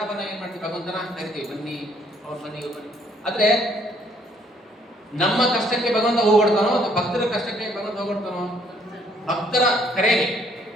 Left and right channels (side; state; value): both; normal; correlation 0.65